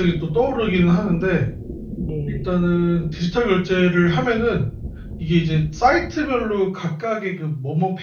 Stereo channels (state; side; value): identical; both; correlation 1.00